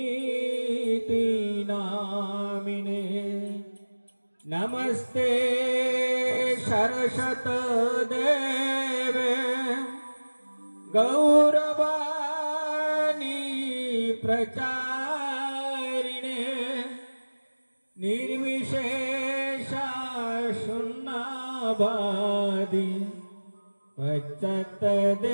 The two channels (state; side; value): inverted; both; correlation -1.00